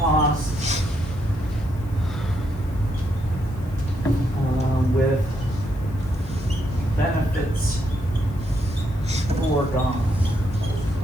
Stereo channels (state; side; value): noise; left; hiss, 28 dB below the sound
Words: with benefits foregone.